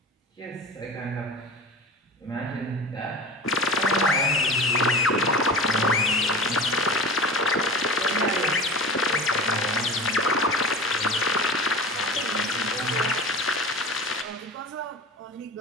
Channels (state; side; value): normal; both; correlation 0.33